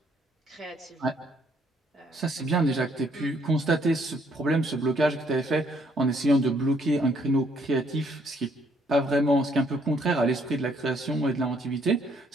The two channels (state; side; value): normal; both; correlation 0.67